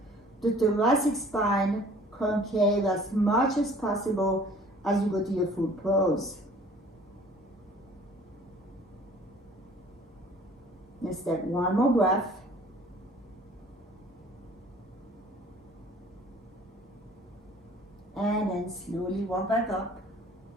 the thoracic spine concave as much as possible as you go to your full pose. Let's take 1 more breath. And then slowly walk back up.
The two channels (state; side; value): normal; both; correlation 0.52